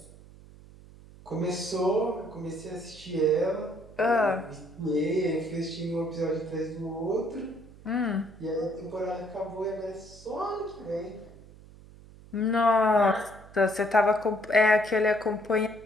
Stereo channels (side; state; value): right; noise; hum, 21 dB below the sound